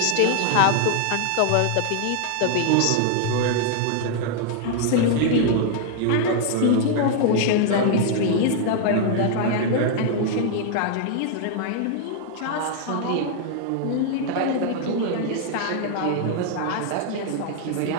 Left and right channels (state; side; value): different; both; correlation 0.00